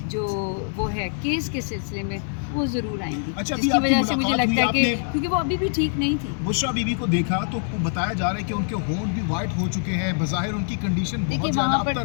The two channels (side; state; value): right; silent; 57 dB below the other